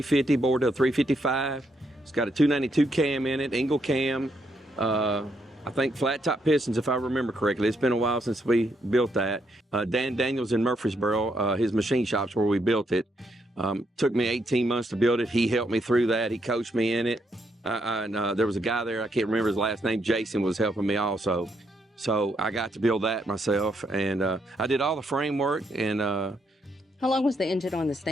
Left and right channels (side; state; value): both; normal; correlation 0.77